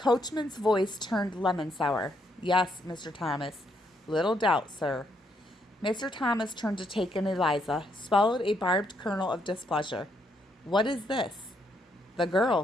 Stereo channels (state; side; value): normal; both; correlation 0.74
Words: voice turned lemon sour. "Yes, Mr. Thomas. Little doubt, sir." Mr. Thomas turned to take in Eliza, swallowed a barbed kernel of displeasure. "What is this?" "The